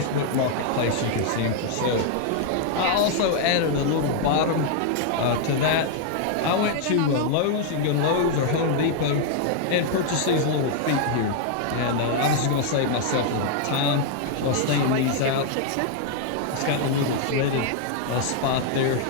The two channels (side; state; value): both; different; correlation 0.00